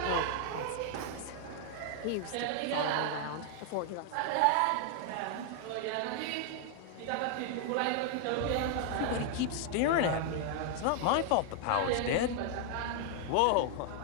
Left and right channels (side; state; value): both; different; correlation 0.00